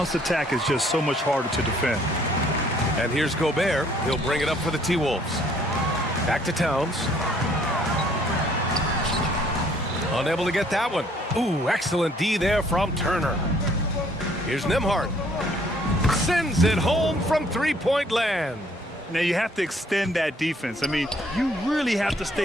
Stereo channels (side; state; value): both; normal; correlation 0.62